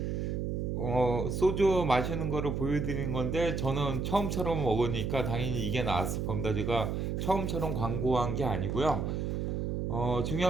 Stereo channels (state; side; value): noise; right; hum, 1 dB below the sound